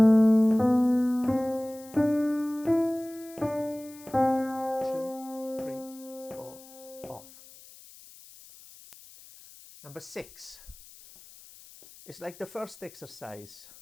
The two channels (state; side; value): noise; left; hiss, 21 dB below the sound